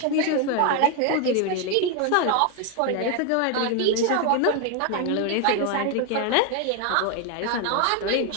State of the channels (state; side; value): different; both; correlation 0.01